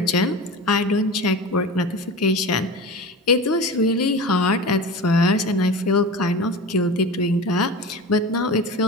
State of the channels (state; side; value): normal; both; correlation 0.30